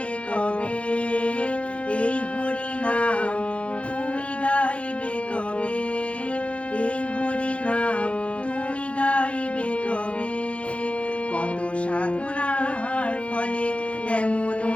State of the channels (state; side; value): late; right; 0.062 ms